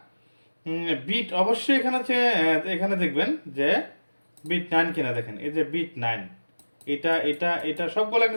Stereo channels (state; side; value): inverted; both; correlation -1.00